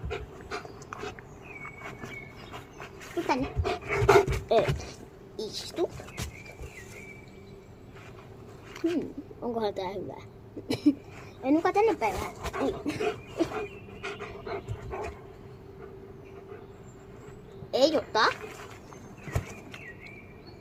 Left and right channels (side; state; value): both; identical; correlation 1.00